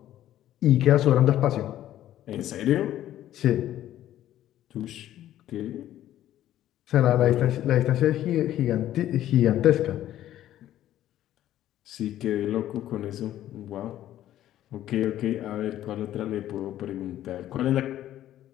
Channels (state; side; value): quieter; right; 12.7 dB